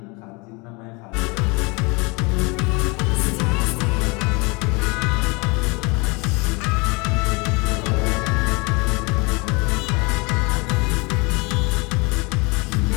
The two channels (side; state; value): right; quieter; 27.8 dB